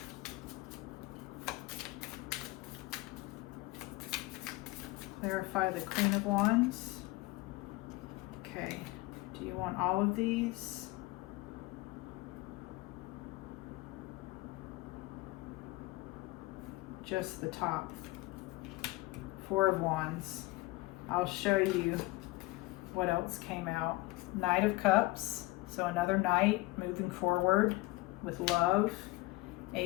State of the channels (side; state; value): right; quieter; 20.7 dB